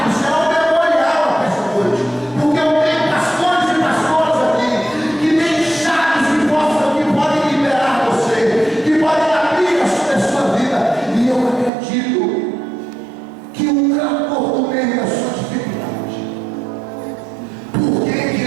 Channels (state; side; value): drops out; left; at 11.7 s